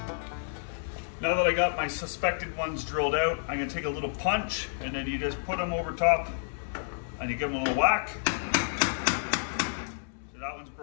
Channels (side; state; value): right; silent; digital silence